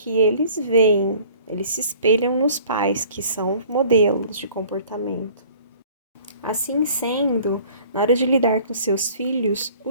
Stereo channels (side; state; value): both; inverted; correlation -0.52